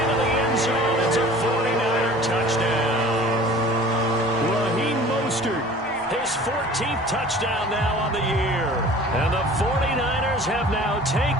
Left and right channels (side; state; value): both; normal; correlation 0.45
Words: the end zone. It's a 49er touchdown. Raheem Mostert, his 14th touchdown now on the year. And the 49ers have now